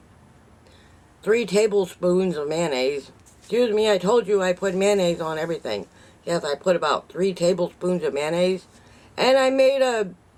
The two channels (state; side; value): identical; both; correlation 1.00